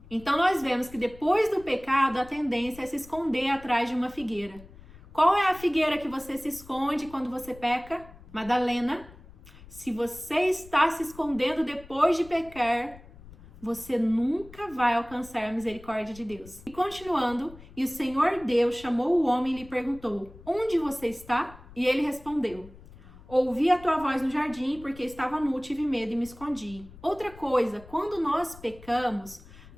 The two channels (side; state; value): left; noise; rumble, 20 dB below the sound